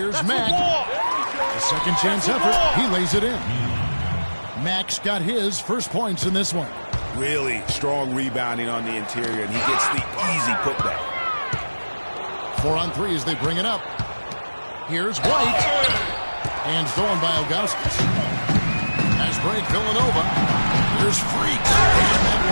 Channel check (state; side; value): inverted; both; correlation -1.00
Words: Mack. A second chance effort. He lays it in. Mack's got his first points in this one. Really strong rebounding on the interior, and he gets the easy putback. 4 on 3 as they bring it up. Here's White. And stolen by Ilgauskas. Pass break, Villanova. Here's Freak. And that